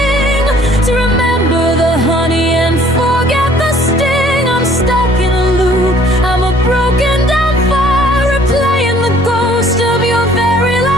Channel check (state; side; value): normal; both; correlation 0.57